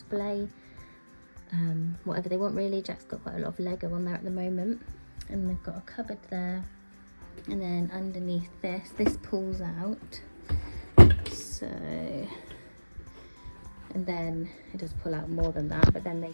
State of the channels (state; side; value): inverted; both; correlation -1.00